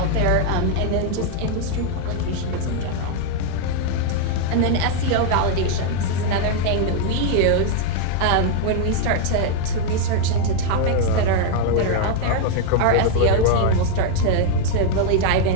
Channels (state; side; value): different; both; correlation 0.00